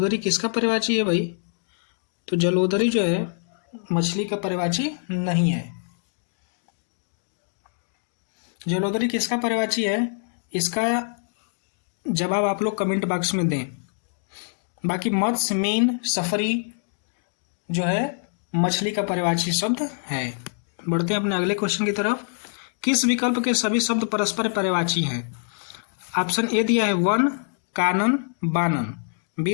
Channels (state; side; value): silent; right; digital silence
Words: किसका पर्यायवाची है भाई? तो जलोदरी जो है मछली का पर्यायवाची नहीं है। जलोदरी किसका पर्यायवाची है? इसका जवाब आप लोग कमेंट बॉक्स में दें। बाकी मत्स्य, मीन, सफरी जो है मछली का पर्यायवाची शब्द है। बढ़ते हैं अपने अगले क्वेश्चन की तरफ। किस विकल्प के सभी शब्द परस्पर पर्यायवाची हैं? ऑप्शन ए दिया है वन, कानन, बानन।